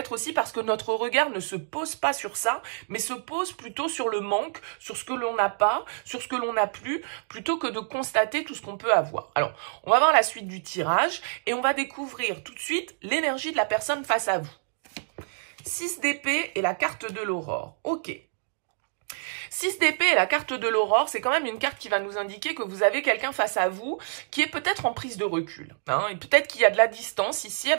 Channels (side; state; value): left; silent; digital silence